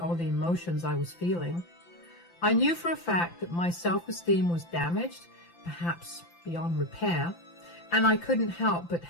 the emotions I was feeling. I knew for a fact that my self-esteem was damaged, perhaps beyond repair, and I couldn't help but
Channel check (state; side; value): late; right; 5.9 ms